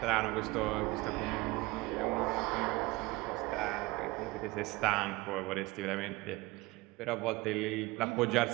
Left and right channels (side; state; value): left; quieter; 21.6 dB